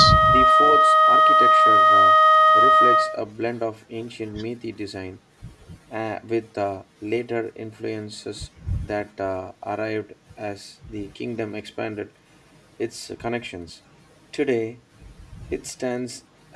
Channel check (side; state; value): both; identical; correlation 1.00